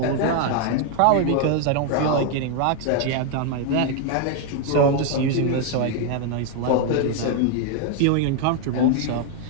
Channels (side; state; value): both; different; correlation 0.01